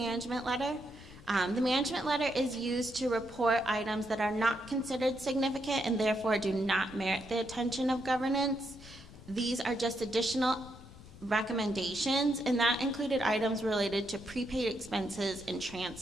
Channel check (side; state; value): left; noise; rumble, 18 dB below the sound